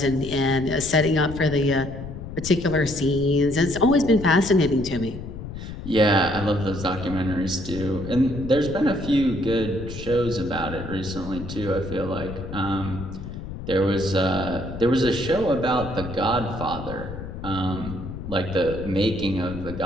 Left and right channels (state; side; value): noise; left; rumble, 9 dB below the sound